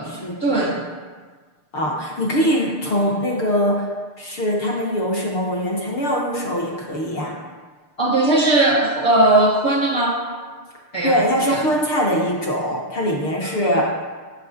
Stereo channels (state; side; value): late; right; 6.7 ms